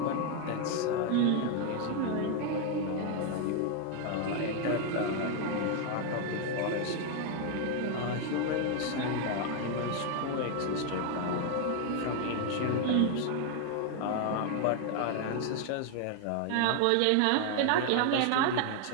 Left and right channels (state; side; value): different; both; correlation 0.00